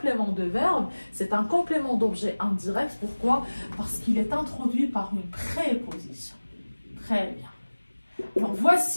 de verbe? C'est un complément d'objet indirect. Pourquoi? Parce qu'il est introduit par une préposition. Très bien. Alors,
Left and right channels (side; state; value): both; inverted; correlation -1.00